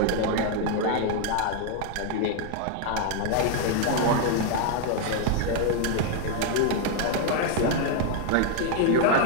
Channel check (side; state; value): both; different; correlation 0.00